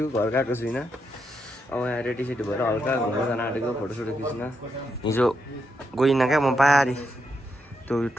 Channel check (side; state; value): both; normal; correlation 0.82